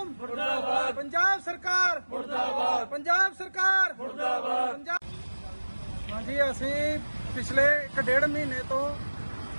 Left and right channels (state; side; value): inverted; both; correlation -1.00